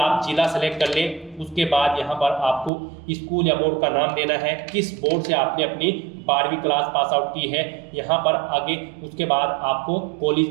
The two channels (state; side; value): drops out; left; at 2.7 s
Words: जिला सेलेक्ट कर लें। उसके बाद यहाँ पर आपको स्कूल या बोर्ड का नाम देना है, किस बोर्ड से आपने अपनी 12वीं क्लास पास आउट की है यहाँ पर आगे। उसके बाद आपको कॉलेज